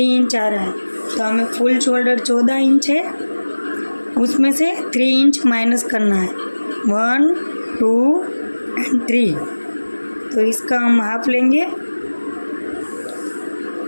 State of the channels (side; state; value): both; inverted; correlation -1.00